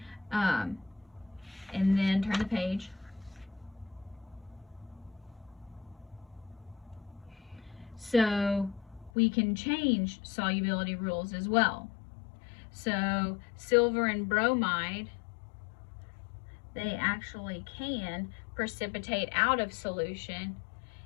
And then turn the page. So we can change solubility rules as well. So silver and bromide, they actually can precipitate out of solution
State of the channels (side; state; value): right; drops out; at 9.1 s